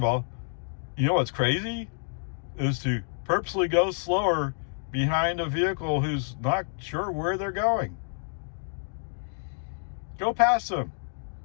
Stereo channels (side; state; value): right; silent; digital silence